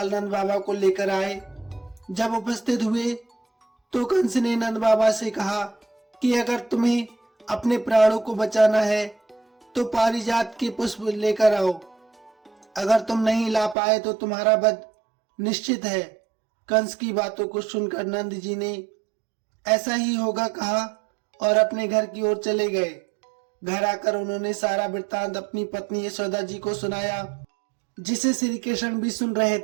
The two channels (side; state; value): left; drops out; at 13.8 s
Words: नंद बाबा को लेकर आए। जब उपस्थित हुए तो कंस ने नंद बाबा से कहा कि अगर तुम्हें अपने प्राणों को बचाना है तो पारिजात के पुष्प लेकर आओ। अगर तुम नहीं ला पाए तो तुम्हारा वध निश्चित है। कंस की बातों को सुनकर नंद जी ने ऐसा ही होगा कहा और अपने घर की ओर चले गए। घर आकर उन्होंने सारा वृत्तांत अपनी पत्नी यशोदा जी को सुनाया, जिसे श्री कृष्ण भी सुन रहे